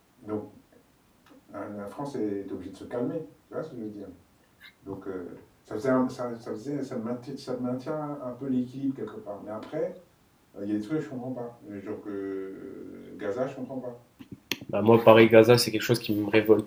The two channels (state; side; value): identical; both; correlation 1.00